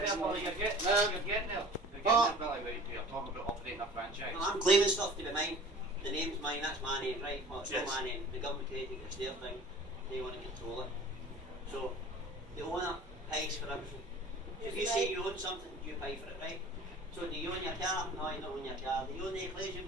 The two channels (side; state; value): both; normal; correlation 0.44